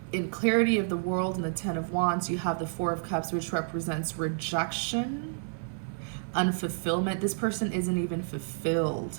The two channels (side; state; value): left; silent; 58 dB below the other